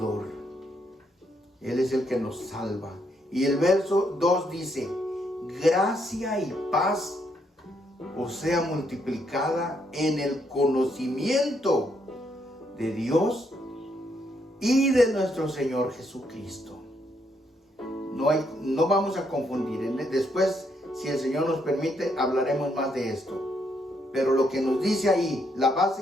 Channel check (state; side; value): normal; both; correlation 0.75